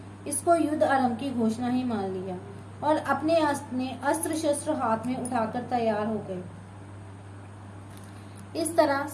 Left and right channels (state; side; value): identical; both; correlation 1.00